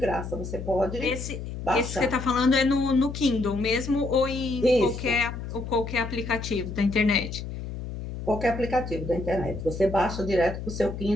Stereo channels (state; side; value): noise; left; hum, 8 dB below the sound